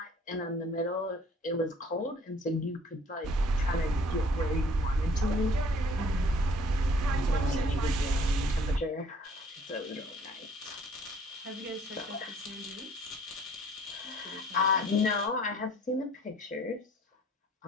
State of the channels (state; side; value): normal; both; correlation 0.55